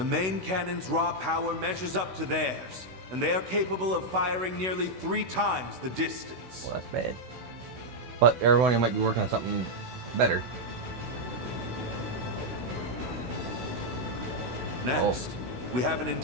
main cannon's raw power measures up to theirs, and they are capable of firing nearly 3 times the distance. Well, that's bad. But Erebonia might be working on something better. Next, we have an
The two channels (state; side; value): late; left; 16 ms